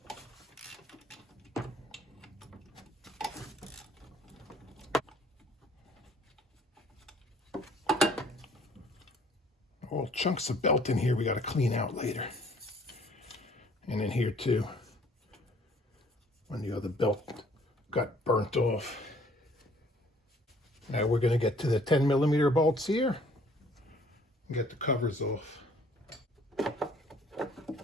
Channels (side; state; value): both; normal; correlation 0.57